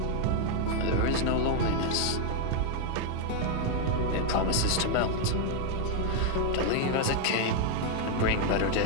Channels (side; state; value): both; different; correlation 0.00